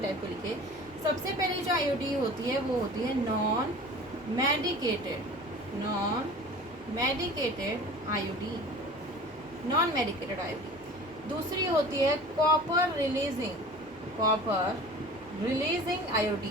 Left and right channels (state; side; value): normal; both; correlation 0.41